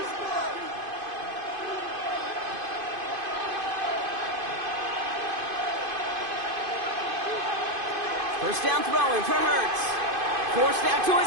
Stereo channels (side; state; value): left; late; 2.5 ms